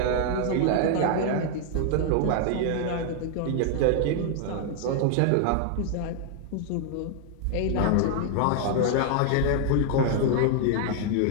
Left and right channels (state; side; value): different; both; correlation 0.00